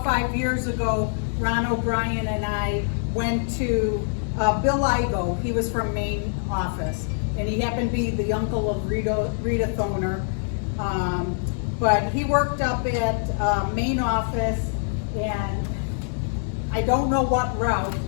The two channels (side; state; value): right; silent; 59 dB below the other